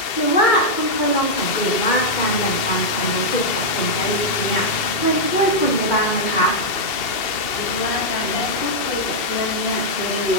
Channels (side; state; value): right; late; 2.7 ms